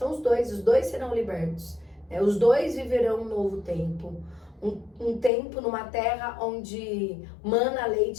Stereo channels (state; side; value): drops out; right; at 5.3 s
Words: os dois serão libertos, né? Os dois viverão um novo tempo, um tempo numa terra onde mana